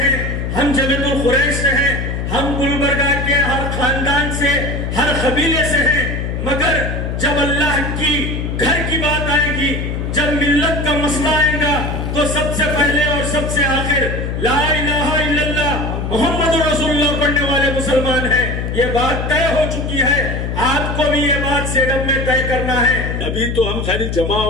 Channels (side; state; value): left; noise; hum, 3 dB below the sound